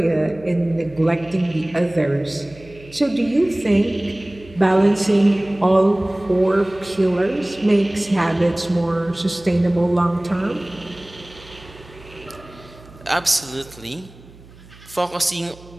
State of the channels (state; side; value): noise; right; hum, 22 dB below the sound